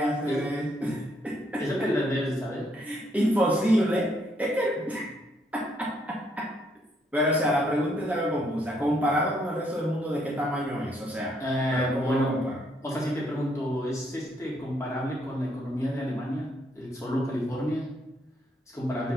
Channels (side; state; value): both; normal; correlation 0.72